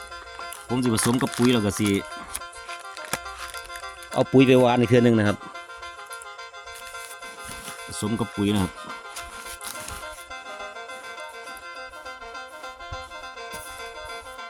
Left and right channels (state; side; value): identical; both; correlation 1.00